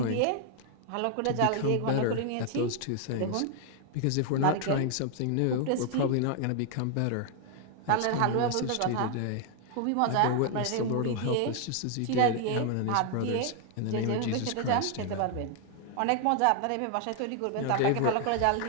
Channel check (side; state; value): both; different; correlation 0.00